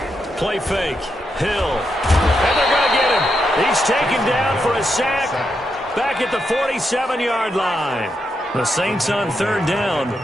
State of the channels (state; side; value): normal; both; correlation 0.83